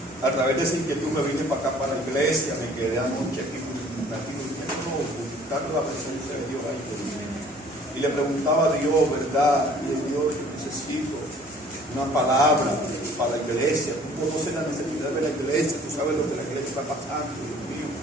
a través de esa inquietud me vine para acá, para la iglesia, me quedé anoche aquí buscando la presencia de Dios ahí. Y le preguntaba a Dios, ¿verdad? Y Dios, yo necesito una palabra para la iglesia. Tú conoces la necesidad de la iglesia, tú sabes lo que la iglesia está pasando, Dios mío.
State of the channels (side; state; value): both; normal; correlation 0.54